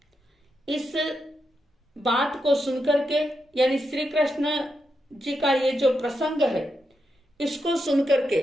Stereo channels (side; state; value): both; normal; correlation 0.85